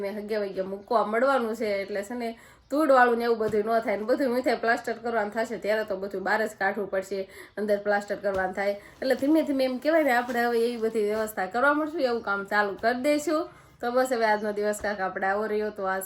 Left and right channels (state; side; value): identical; both; correlation 1.00